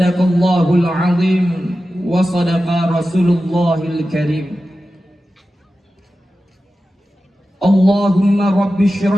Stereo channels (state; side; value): normal; both; correlation 0.93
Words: azim wa sadaqa Rasulullahil karim. Allahumma rabbi